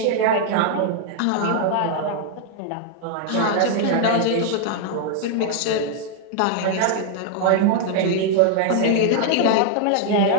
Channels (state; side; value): different; both; correlation 0.00